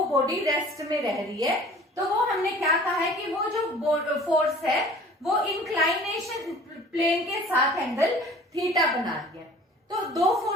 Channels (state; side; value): normal; both; correlation 0.47